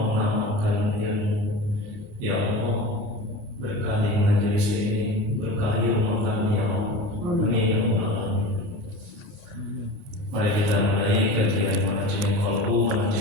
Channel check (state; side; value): late; left; 28 ms